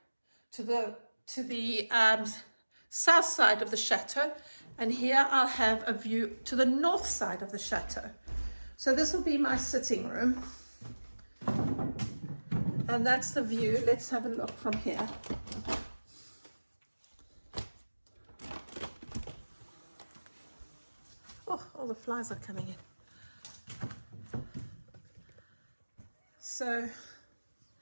to the south side of the chateau, and here I'll have a view to the north side of the chateau. So this will be my sitting room, and that's the view. Let's have a look from here. Oh, all the flies are coming in. So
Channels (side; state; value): both; inverted; correlation -1.00